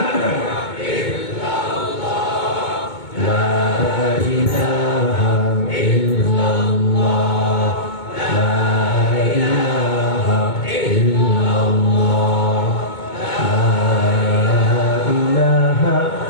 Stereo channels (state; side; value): late; right; 2.2 ms